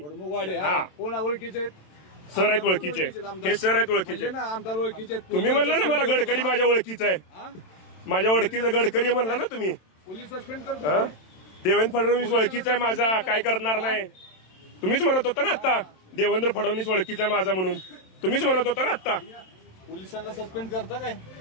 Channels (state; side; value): late; right; 27 ms